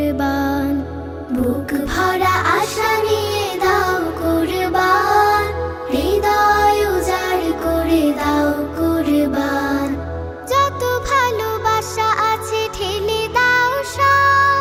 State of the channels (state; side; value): identical; both; correlation 1.00